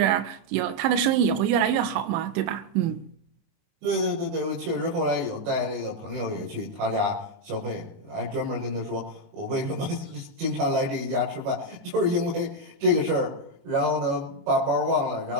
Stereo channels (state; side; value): late; left; 28 ms